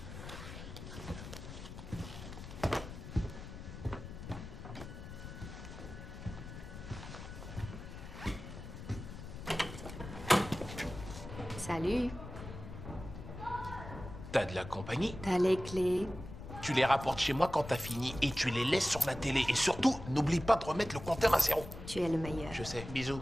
Salut. T'as de la compagnie? T'as les clés. Tu les rapportes chez moi quand t'as fini et tu les laisses sur la télé. Et surtout, n'oublie pas de remettre le compteur à 0. Tu es le meilleur. Je sais. Bisous.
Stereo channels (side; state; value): left; noise; rumble, 11 dB below the sound